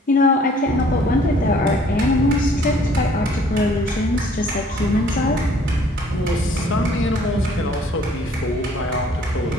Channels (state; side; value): normal; both; correlation 0.57